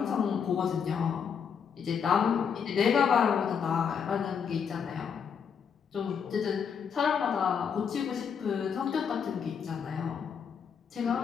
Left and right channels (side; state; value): right; quieter; 7.0 dB